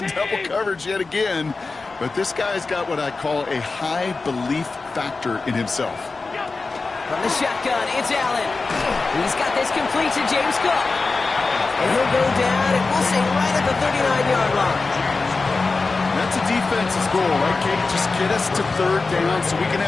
double coverage yet again. But this guy's got what I call a high belief factor in himself. From the shotgun, it's Allen. He's got this complete to James Cook. And he'll go down, and we'll say right at the 39-yard line. That's a the defense's goal, right, Kate? Just get us to third down so we can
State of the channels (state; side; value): quieter; right; 3.9 dB